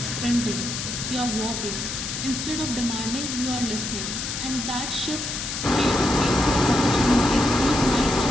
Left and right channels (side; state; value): left; noise; hiss, 5 dB below the sound